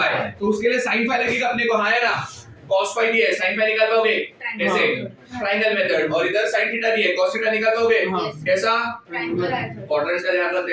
तो उसके लिए sin phi लगेगा अपने को। हाँ है ना? cos phi दिया है, sin phi निकाल पाओगे कैसे? Triangle method. और इधर sin theta दिया है, cos theta निकाल पाओगे कैसा? क्वाड्रेंट्स का ध्यान रख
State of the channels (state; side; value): identical; both; correlation 1.00